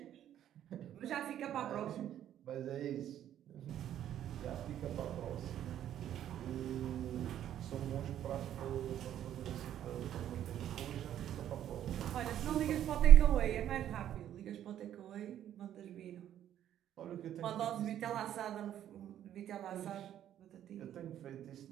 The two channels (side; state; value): left; quieter; 11.1 dB